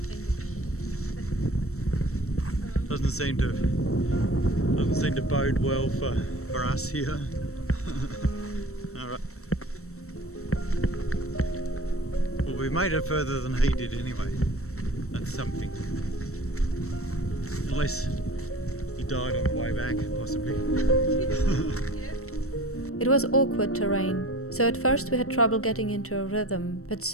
Doesn't seem to bode well for us here. Alright. Well, we made it further than he did anyway. That's something. Unless he died on the way back, possibly. It was awkward terrain, so at first we had trouble getting into a rhythm, but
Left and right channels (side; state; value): right; late; 0.63 ms